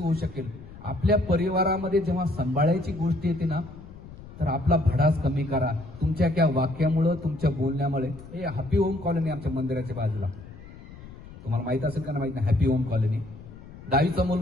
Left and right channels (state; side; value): noise; left; rumble, 16 dB below the sound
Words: शकेल. आपल्या परिवारामध्ये जेव्हा सांभाळायची गोष्ट येते ना, तर आपला भडास कमी करा. तुमच्या त्या वाक्यामुळं, तुमच्या बोलण्यामुळे. हे हॅपी होम कॉलनी आमच्या मंदिराच्या बाजूला, तुम्हाला माहित असेल का ना माहित नाही, हॅपी होम कॉलनी. 10वीचा